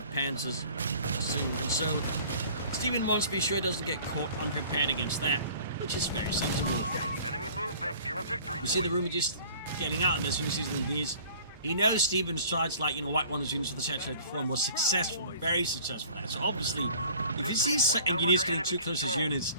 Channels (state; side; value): inverted; both; correlation -0.49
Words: Panzers soon, and so Stephenn wants to be sure he doesn't get caught unprepared against that, which is very sensible. We see the Ruby just getting out of this when he sees these. He knows Stephen's tried, like, White Wonders units for the saturated form was successful, very successful. So obviously, if he sees engineers getting too close to his units,